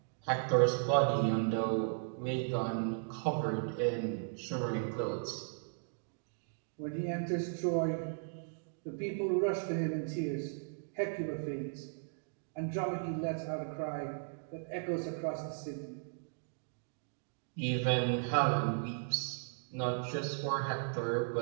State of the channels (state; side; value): silent; left; digital silence